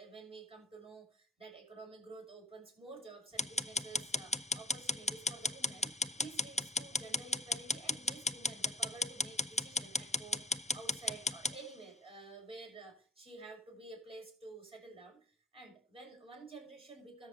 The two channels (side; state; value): both; normal; correlation 0.44